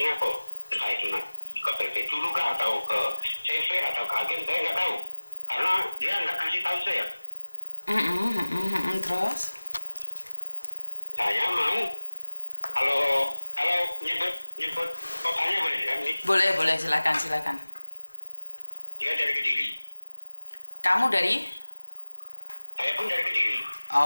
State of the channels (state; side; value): inverted; both; correlation -1.00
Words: Entah itu ke PT dulu kah atau ke CV atau ke agen, saya nggak tahu. Karena dia nggak kasih tahu saya. Terus? Saya mau kalau nyebut kotanya boleh kan nih? Boleh, silakan. Dia dari Kediri. Kamu dari? Saya pun dari Kediri.